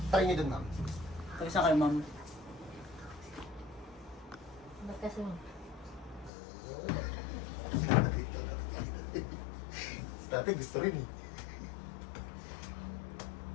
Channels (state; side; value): drops out; right; at 6.3 s